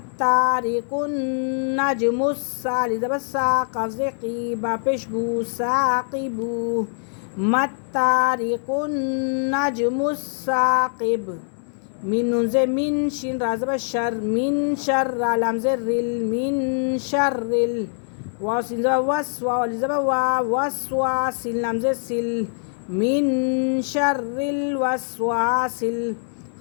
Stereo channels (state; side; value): silent; right; digital silence